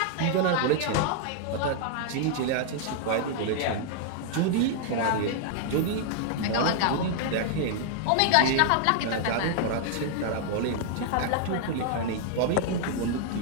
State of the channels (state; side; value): different; both; correlation -0.01